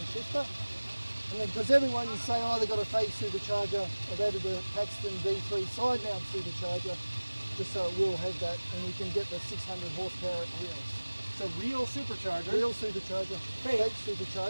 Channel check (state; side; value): inverted; both; correlation -1.00